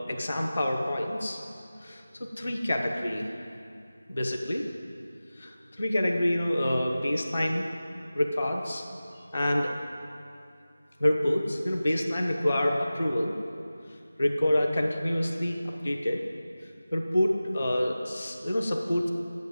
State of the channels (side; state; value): both; inverted; correlation -0.96